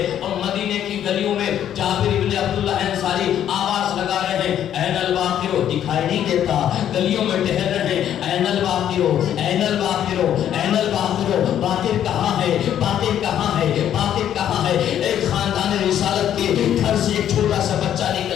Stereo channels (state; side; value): quieter; right; 10.4 dB